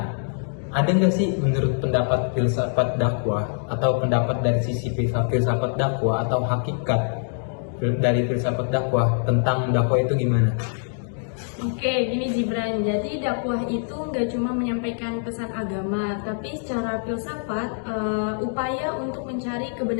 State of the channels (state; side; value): silent; right; digital silence